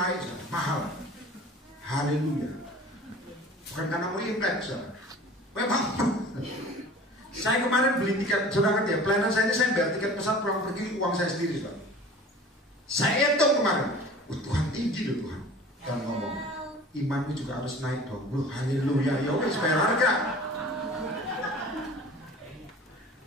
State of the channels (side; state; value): both; normal; correlation 0.43